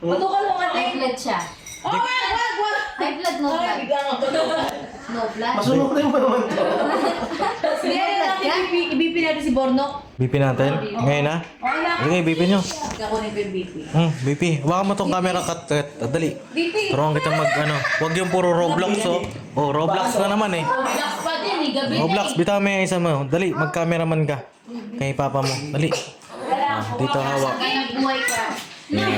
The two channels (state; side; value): identical; both; correlation 1.00